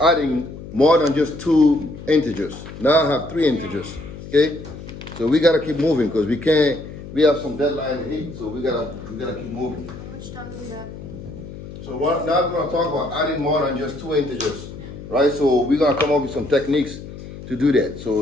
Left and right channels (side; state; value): left; noise; hum, 13 dB below the sound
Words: more than just 2 integers. Now I have 3 integers. Okay? So we gotta keep moving because we can't. We have some deadline to hit, so we gotta keep moving. How much time do we have? So now we're gonna talk about adding more than just 2 integers, right? So we're gonna come up with some techniques to do that. So